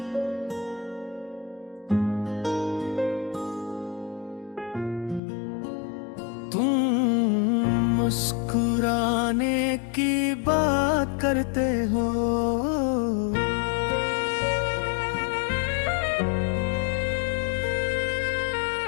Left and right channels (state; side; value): drops out; right; at 5.2 s